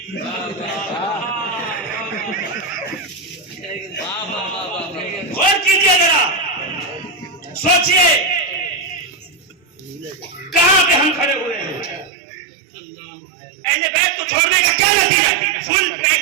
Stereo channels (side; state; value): left; drops out; at 12.1 s